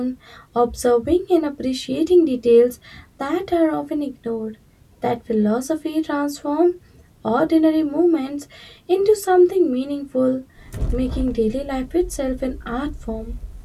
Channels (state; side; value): identical; both; correlation 1.00